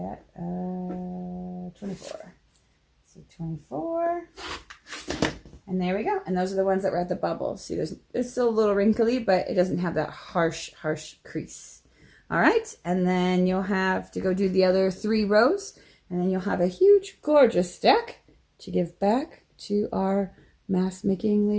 at? 24. So 24. And there we go. And those are the ones that were at the bubble. See, it's still a little wrinkly, but it doesn't have that harsh crease. All right. And then you'll have to go do the other 3 rows. And then you'll have a huge, gorgeous stack to give back to our mask making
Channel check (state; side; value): identical; both; correlation 1.00